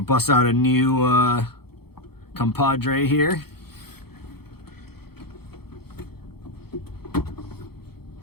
out a new compadre here.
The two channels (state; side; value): late; right; 0.96 ms